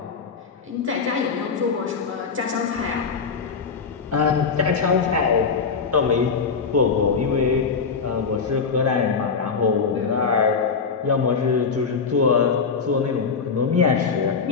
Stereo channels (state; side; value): quieter; right; 5.4 dB